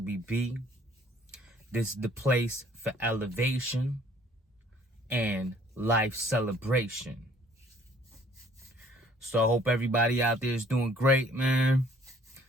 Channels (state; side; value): normal; both; correlation 0.58